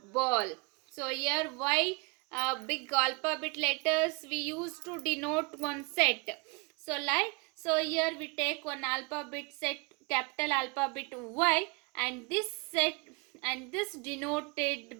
So here y big alphabet letters we use to denote one set. So here we take one alphabet set, capital alphabet y, and this set and this denote the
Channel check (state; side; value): quieter; left; 29.5 dB